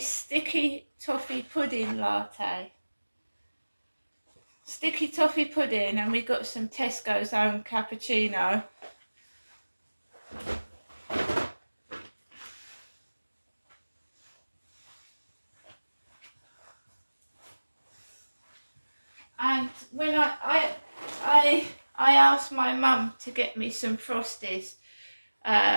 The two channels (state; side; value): inverted; both; correlation -1.00